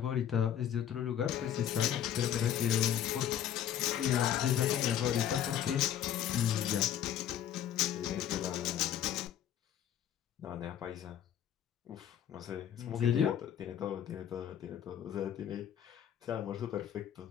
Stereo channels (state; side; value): quieter; right; 10.2 dB